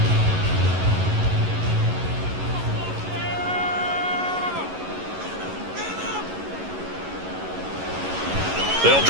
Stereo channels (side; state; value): left; late; 11 ms